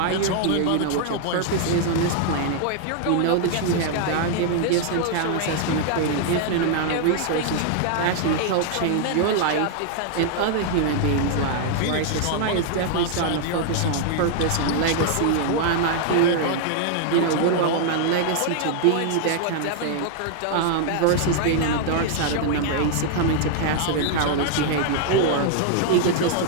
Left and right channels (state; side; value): different; both; correlation 0.00